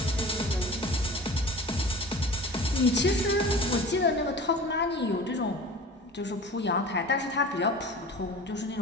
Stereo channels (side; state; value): both; normal; correlation 0.38